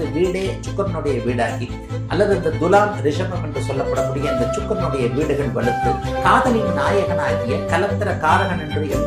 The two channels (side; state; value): both; identical; correlation 1.00